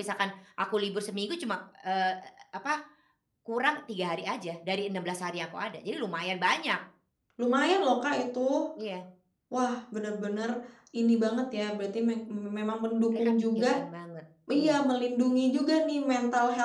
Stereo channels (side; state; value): both; identical; correlation 1.00